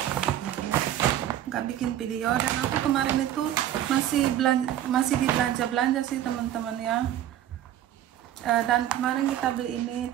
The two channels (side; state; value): left; quieter; 11.9 dB